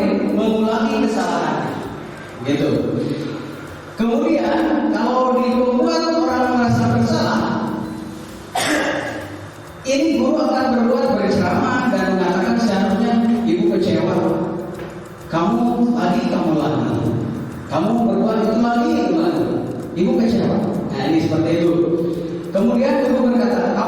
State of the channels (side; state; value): both; identical; correlation 1.00